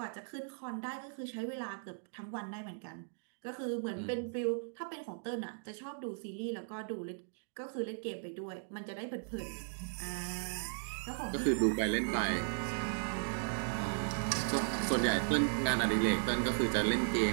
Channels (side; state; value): left; silent; digital silence